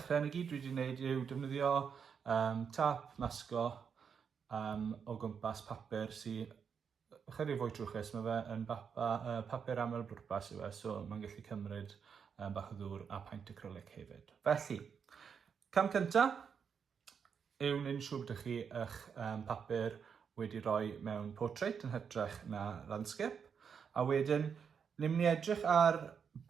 ni gyd dwi wedi gwneud yw defnyddio tap masgo o gwmpas papur sydd chydig fwy trwchus. Mae fe yn papur aml bwrpas yw e, so mae'n gallu cymryd bach o ddŵr a paint acrylic hefyd. Felly, cam cyntaf yw wneud yn siŵr bod chi eich papur wedi rhoi mewn portrait yn hytrach na landscape. A wedyn, ni'n mynd i edrych ar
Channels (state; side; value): quieter; left; 6.7 dB